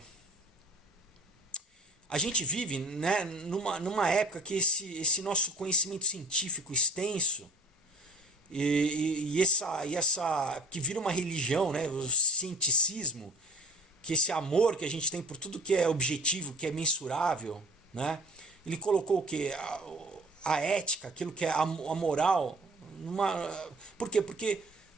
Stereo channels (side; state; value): both; normal; correlation 0.43